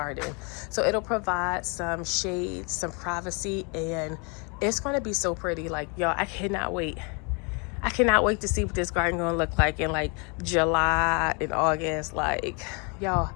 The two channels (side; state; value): right; quieter; 33.4 dB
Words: so it'll provide some shade, some privacy, and it's going to be so pretty. Like, y'all, I cannot wait to see what this garden gonna look like in like July and August. Like, y'all